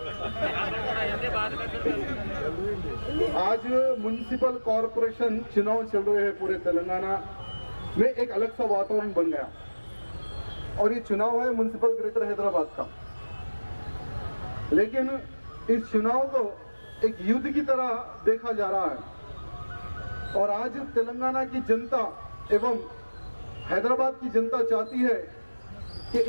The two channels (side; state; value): both; inverted; correlation -1.00